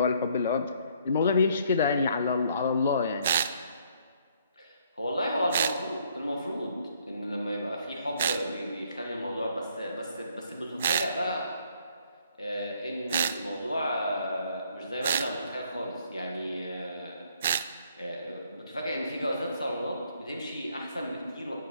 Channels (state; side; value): inverted; both; correlation -0.66